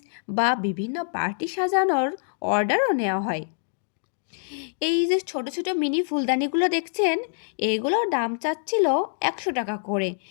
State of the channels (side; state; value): right; silent; digital silence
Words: বা বিভিন্ন পার্টি সাজানোর অর্ডারও নেওয়া হয়। এই যে ছোট ছোট মিনি ফুলদানিগুলো দেখছেন, এগুলোর দাম চাচ্ছিল 100 টাকা করে।